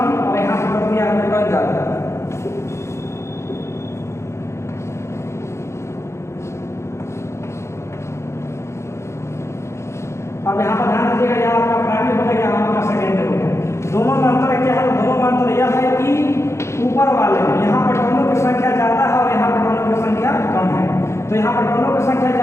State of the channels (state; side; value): late; right; 0.13 ms